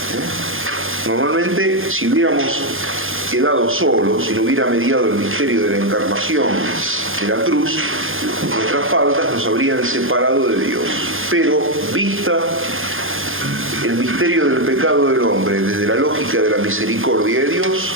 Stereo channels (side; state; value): left; late; 0.59 ms